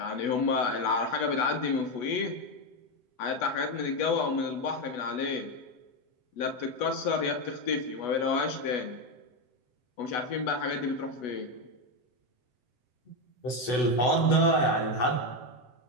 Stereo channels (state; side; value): late; right; 8.0 ms